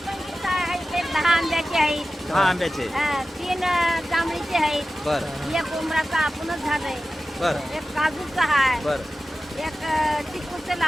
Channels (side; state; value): both; normal; correlation 0.94